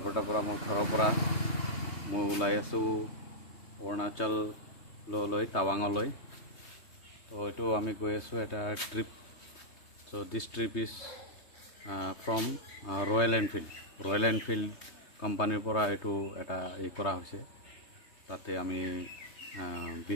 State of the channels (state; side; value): late; right; 3.2 ms